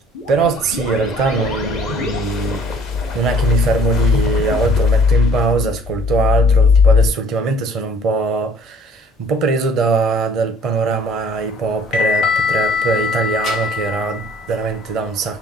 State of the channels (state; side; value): normal; both; correlation 0.55